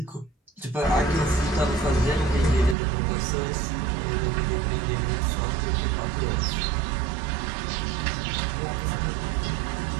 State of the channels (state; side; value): drops out; left; at 2.8 s